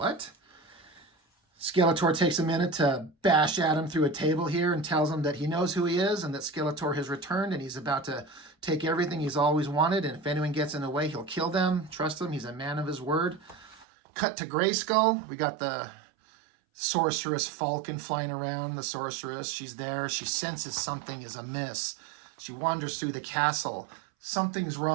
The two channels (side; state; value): left; drops out; at 13.9 s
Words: Skeletor takes a minute to bash Adam through a table here and tells him that he knows who he is and that Skeletor has returned and he's about to take everything he's always wanted, and if anyone gets in the way, he'll kill them. Trust him, he's a man of his word. Cut to Grayskull. We got the sorceress Falcon flying around. The sorceress, she's there. She senses something is amiss. She wanders through the castle. Something's